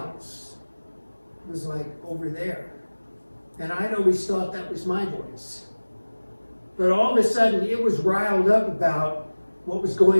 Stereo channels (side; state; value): both; inverted; correlation -1.00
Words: It was like over there. And I'd always thought that was my voice. But all of a sudden, it was riled up about what was